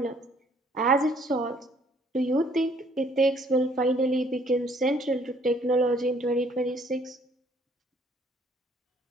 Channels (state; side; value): normal; both; correlation 0.62